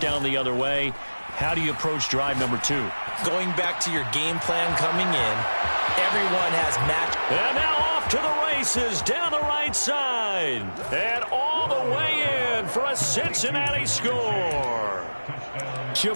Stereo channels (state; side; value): inverted; both; correlation -1.00